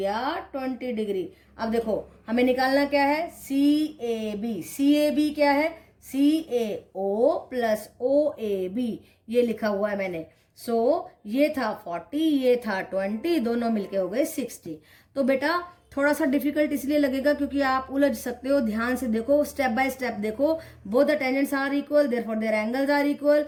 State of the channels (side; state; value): both; identical; correlation 1.00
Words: 20 degree. अब देखो हमें निकालना क्या है, सी A B. C A B क्या है, सी ए O plus O A B, ये लिखा हुआ है मैंने। सो ये था 40, ये था 20, दोनों मिलके हो गए 60। तो बेटा थोड़ा सा डिफिकल्ट इसलिए लगेगा क्योंकि आप उलझ सकते हो। ध्यान से देखो, स्टेप बाय स्टेप देखो। Both the tangents are equal, therefore their angles are equal.